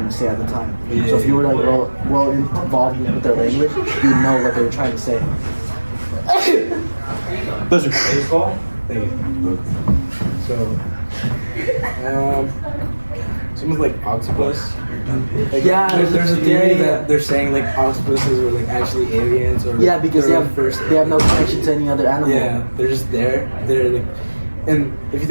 to say at the time. So if you were like well involved with their language, you know what they were trying to say. Pleasure. Thank you. So, someone's like octopus. Like, Yeah, there's a theory yeah. that they're saying like octopuses were like actually aliens, or Yeah, because they have no connection to any other animal. Yeah, they're just there. They're like, and if you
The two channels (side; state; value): both; inverted; correlation -1.00